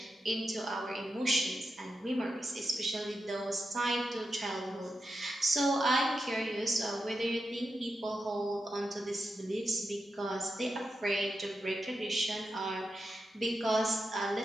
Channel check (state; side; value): normal; both; correlation 0.88